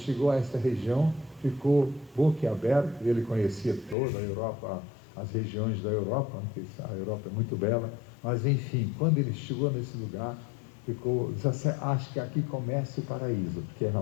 a esta região, ficou boquiaberto. Ele conhecia toda a Europa, as regiões da Europa, a Europa é muito bela, mas enfim, quando ele chegou nesse lugar, ficou, acho que aqui começa o paraíso, porque é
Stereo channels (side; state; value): right; drops out; at 4.0 s